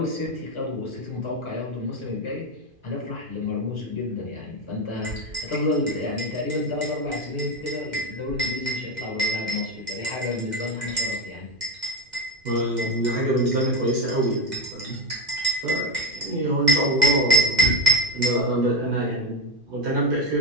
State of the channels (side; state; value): left; late; 2.5 ms